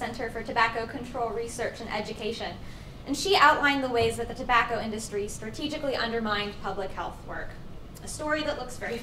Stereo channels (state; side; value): identical; both; correlation 1.00